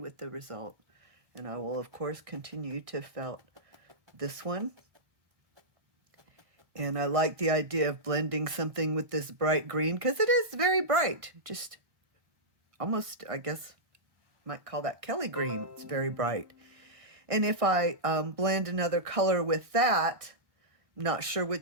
the result. And I will, of course, continue to felt this one. And I like the idea of blending something with this bright green, because it is very bright. Just almost, I guess, might call that Kelly green. It's very bright. And if I blend another color with that, not sure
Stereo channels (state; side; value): late; left; 1.5 ms